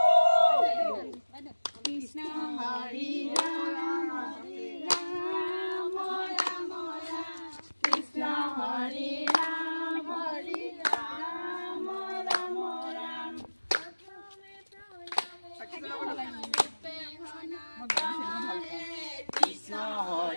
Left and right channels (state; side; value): inverted; both; correlation -1.00